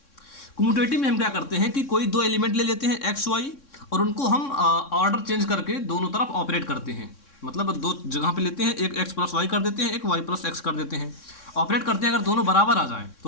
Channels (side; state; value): right; late; 3.6 ms